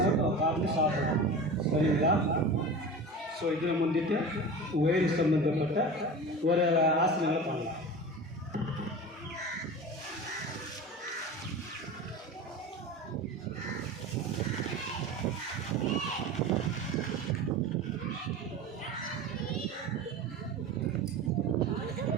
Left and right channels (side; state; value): both; normal; correlation 0.32